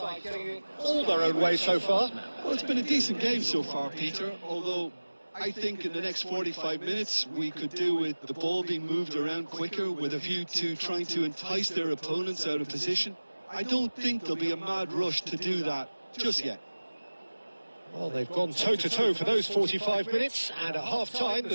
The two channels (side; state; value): both; inverted; correlation -1.00